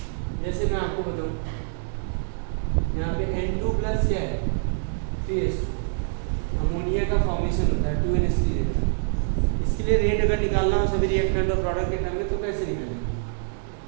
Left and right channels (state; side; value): silent; left; digital silence